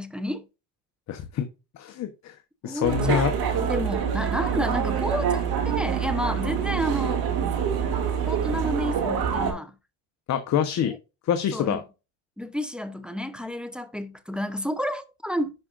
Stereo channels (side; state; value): both; normal; correlation 0.31